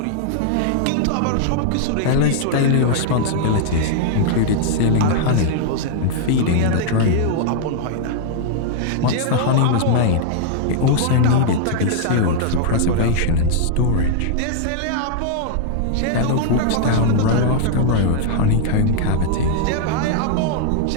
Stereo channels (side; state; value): both; different; correlation -0.01